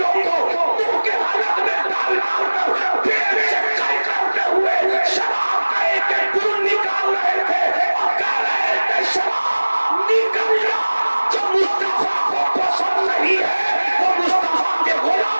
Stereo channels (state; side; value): inverted; both; correlation -1.00